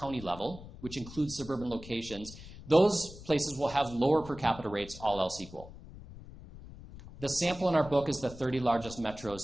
level, which includes suburban locations. Those places will have lower per capita rates, all else equal. The sample in our book is the 30 largest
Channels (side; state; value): left; noise; rumble, 16 dB below the sound